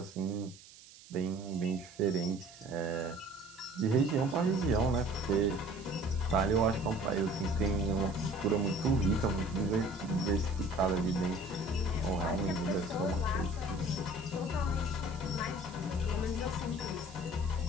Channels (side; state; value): right; noise; hiss, 20 dB below the sound